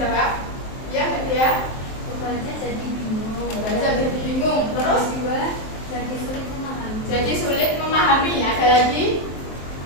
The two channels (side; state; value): right; late; 23 ms